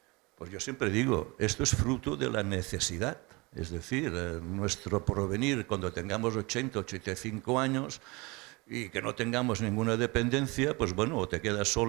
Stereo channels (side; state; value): left; quieter; 25.5 dB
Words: Pues yo siempre digo, esto es fruto de la necesidad. Es decir, nuestro porvenir, cuando tengamos 80, 85 años y que no tengamos ninguna dependencia, pues bueno, o te quedas